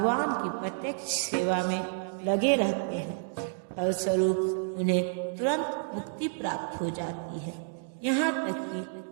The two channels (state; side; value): silent; left; digital silence